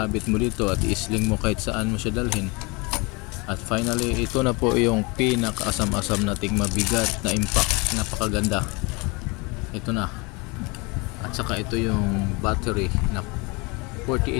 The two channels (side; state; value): right; quieter; 27.7 dB